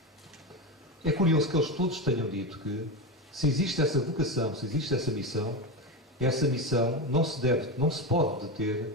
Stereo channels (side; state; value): both; normal; correlation 0.17